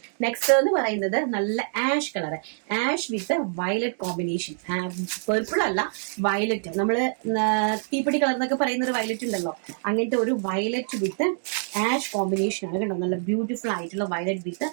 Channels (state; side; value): silent; left; digital silence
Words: നെക്സ്റ്റ് എന്ന് പറയുന്നത് നല്ല ആഷ് കളർ, ആഷ് വിത്ത് വയലറ്റ് കോമ്പിനേഷൻ. പെർപ്പിൾ അല്ല, വയലറ്റ്. നമ്മള് തീപ്പൊടി കളർ എന്നൊക്കെ പറയുന്ന ഒരു വയലറ്റ് ഉണ്ടല്ലോ, അങ്ങനത്തെ ഒരു വയലറ്റ് വിത്ത് ആഷ് കോമ്പിനേഷൻ ആണ്. കണ്ടോ, നല്ല ബ്യൂട്ടിഫുൾ ആയിട്ടുള്ള വയലറ്റ് വിത്ത്